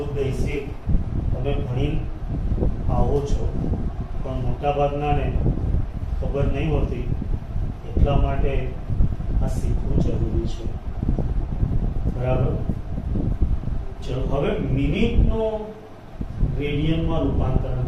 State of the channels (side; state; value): both; identical; correlation 1.00